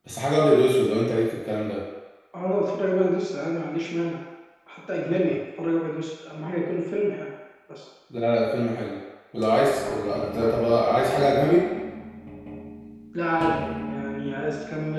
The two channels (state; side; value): identical; both; correlation 1.00